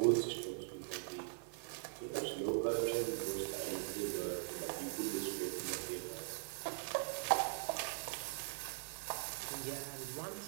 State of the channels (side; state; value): left; silent; 50 dB below the other